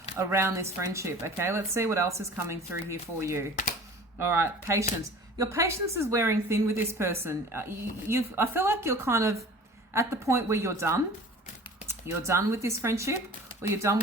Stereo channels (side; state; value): both; normal; correlation 0.43